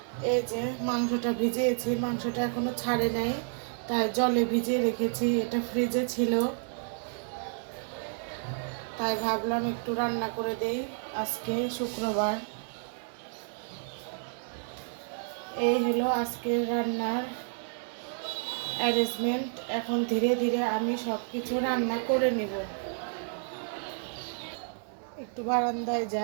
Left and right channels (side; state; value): left; silent; 57 dB below the other